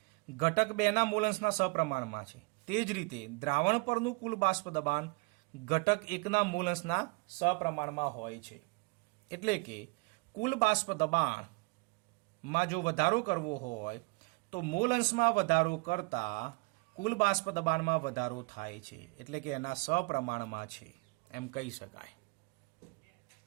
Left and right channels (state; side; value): quieter; left; 29.2 dB